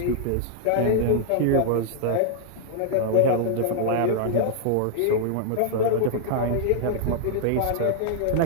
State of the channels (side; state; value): both; different; correlation -0.01